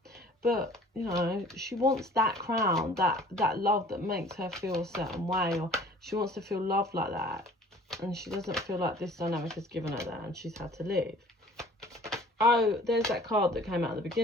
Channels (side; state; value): both; normal; correlation 0.50